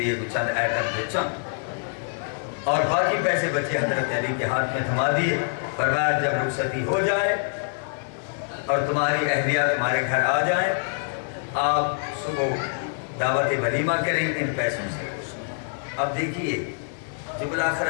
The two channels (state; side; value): silent; right; digital silence